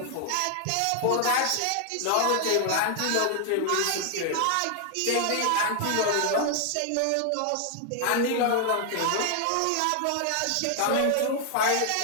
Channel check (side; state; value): both; different; correlation 0.00